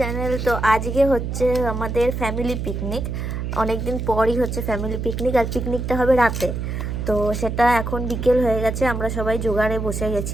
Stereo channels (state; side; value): noise; right; hum, 3 dB below the sound